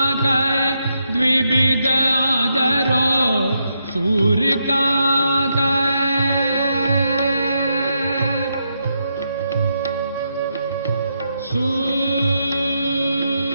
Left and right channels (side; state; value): both; inverted; correlation -0.81